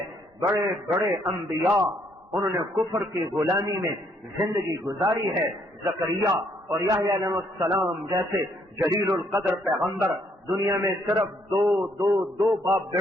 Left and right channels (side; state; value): both; normal; correlation 0.69